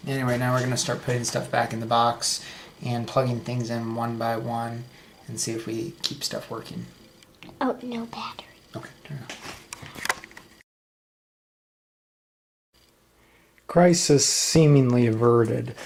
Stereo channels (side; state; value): both; identical; correlation 1.00